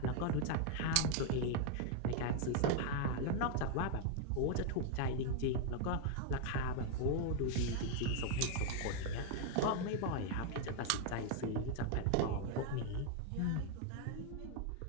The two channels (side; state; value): both; different; correlation 0.00